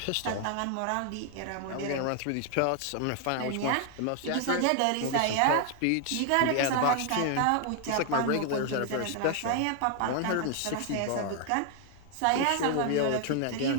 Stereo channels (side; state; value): both; different; correlation 0.00